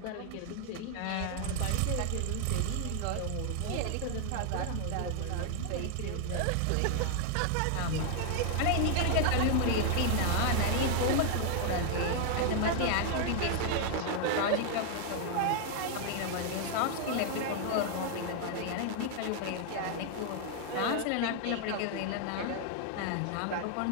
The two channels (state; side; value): different; both; correlation 0.00